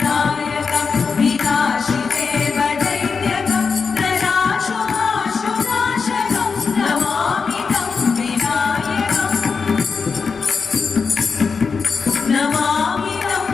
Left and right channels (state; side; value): quieter; right; 5.2 dB